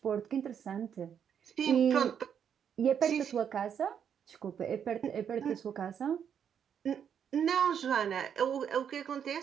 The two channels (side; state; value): left; quieter; 8.2 dB